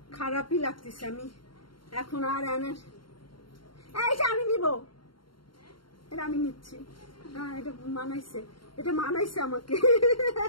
খারাপই লাগতেছে, আমি এখন আর এইটা আমি নিব, এটা আমি নিচ্ছি। হ্যাঁ এটা মানাইছে আমাকে।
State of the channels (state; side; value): late; right; 0.73 ms